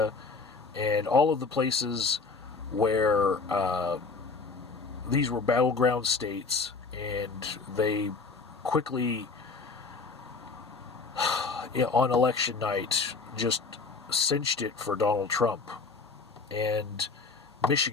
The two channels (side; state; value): right; quieter; 4.3 dB